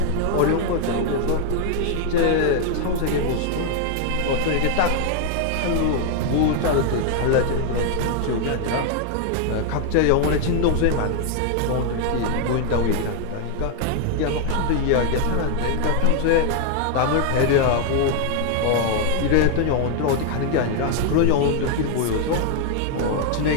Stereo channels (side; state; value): both; different; correlation 0.00